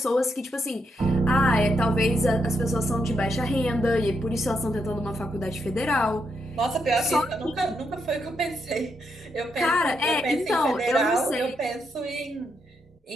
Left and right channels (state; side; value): normal; both; correlation 0.80